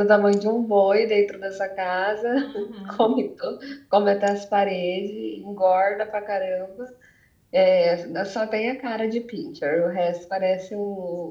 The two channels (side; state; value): both; identical; correlation 1.00